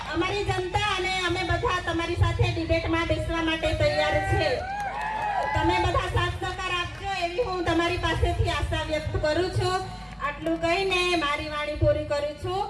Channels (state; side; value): identical; both; correlation 1.00